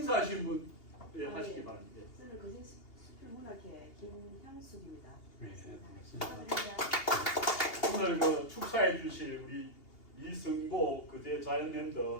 분 하시기 바랍니다. 저는 거제 수필 문학회 김향숙입니다. 네, 축하드립니다. 오늘 그 축사해 주실 우리 이승보 그제 자연랜드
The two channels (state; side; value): late; right; 2.8 ms